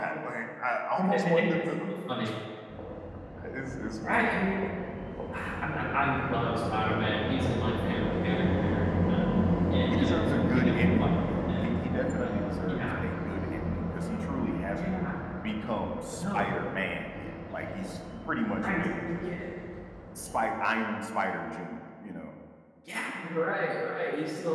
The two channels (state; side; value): identical; both; correlation 1.00